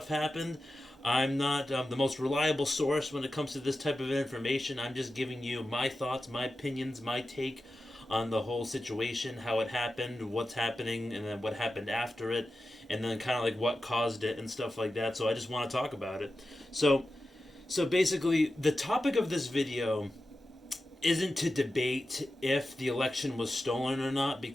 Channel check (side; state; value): both; normal; correlation 0.92